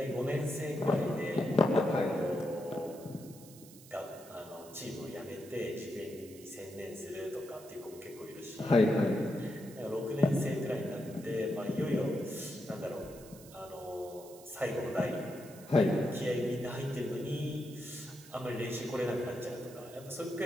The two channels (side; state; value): right; noise; hiss, 20 dB below the sound